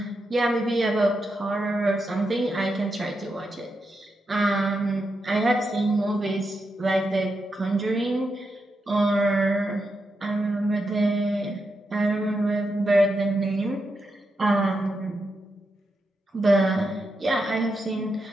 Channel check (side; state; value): both; normal; correlation 0.85